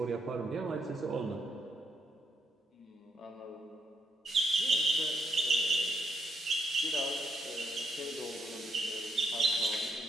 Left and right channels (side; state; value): both; normal; correlation 0.76